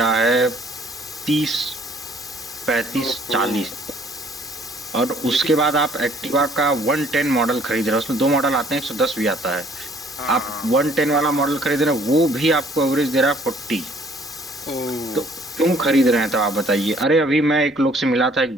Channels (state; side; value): normal; both; correlation 0.59